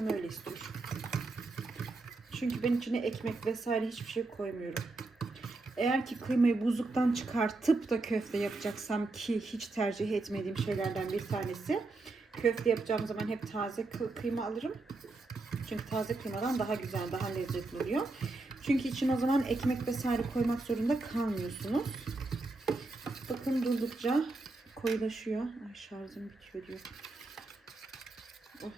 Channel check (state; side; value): quieter; left; 3.3 dB